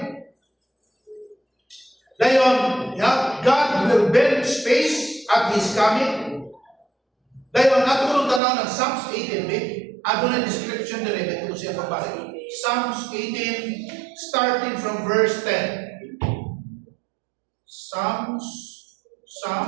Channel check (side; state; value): left; drops out; at 8.4 s